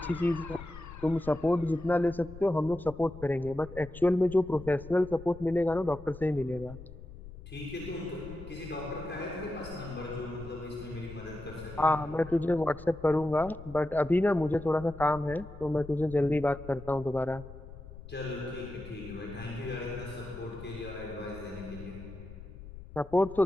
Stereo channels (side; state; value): left; noise; rumble, 15 dB below the sound